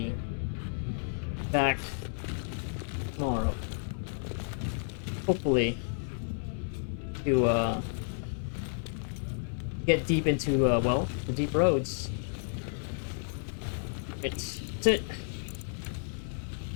back tomorrow. Hopefully to get deep into well, the deep roads. That's it.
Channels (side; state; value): right; silent; 57 dB below the other